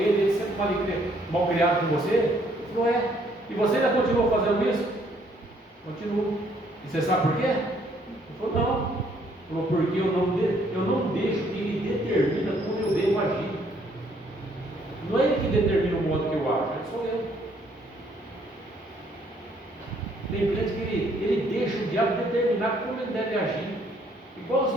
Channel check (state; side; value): normal; both; correlation 0.66